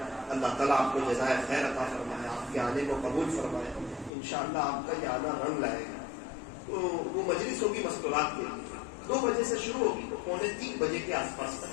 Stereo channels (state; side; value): drops out; right; at 4.1 s